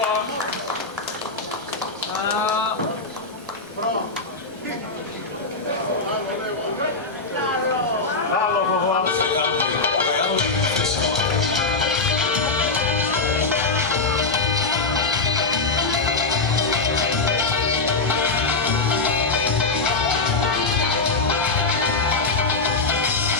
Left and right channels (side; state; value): right; quieter; 3.8 dB